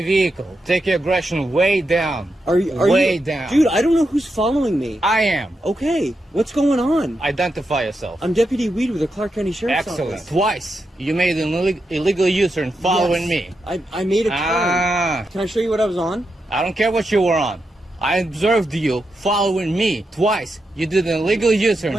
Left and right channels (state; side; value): normal; both; correlation 0.86